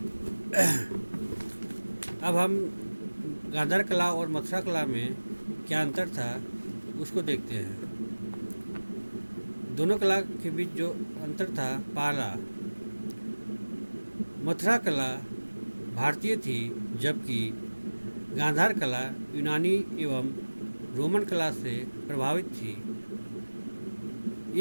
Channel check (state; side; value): inverted; both; correlation -1.00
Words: अब हम गांधार कला और मथुरा कला में क्या अंतर था उसको देखते हैं। दोनों कला के बीच जो अंतर था, पहला, मथुरा कला भारतीय थी जबकि गांधार कला यूनानी एवं रोमन कला से प्रभावित थी।